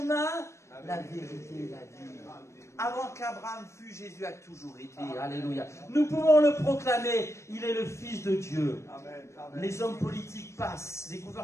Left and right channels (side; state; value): right; late; 0.14 ms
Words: la vérité et la vie? Avant qu'Abraham fût, Jésus a toujours été. Alléluia. Nous pouvons le proclamer. Il est le Fils de Dieu. Amen. Les hommes politiques passent, les